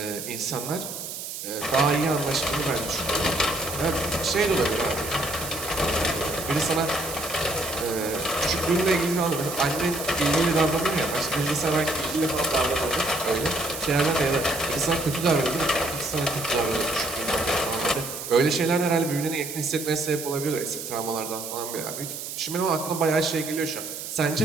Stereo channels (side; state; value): right; noise; hiss, 8 dB below the sound